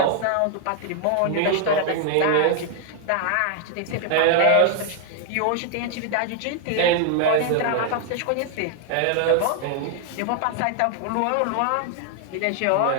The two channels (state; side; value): different; both; correlation 0.00